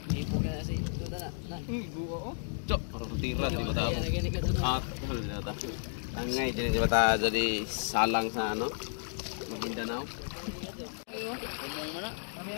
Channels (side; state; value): right; silent; digital silence